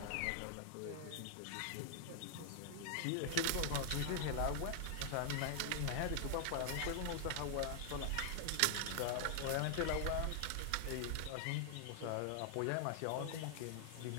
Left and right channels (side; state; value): both; different; correlation 0.00